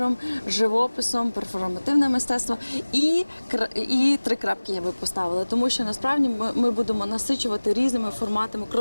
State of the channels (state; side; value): inverted; both; correlation -1.00